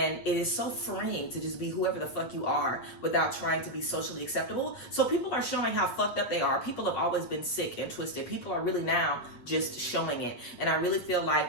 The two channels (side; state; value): right; late; 8.5 ms